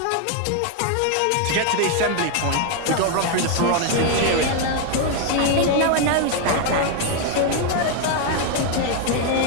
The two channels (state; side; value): different; both; correlation 0.00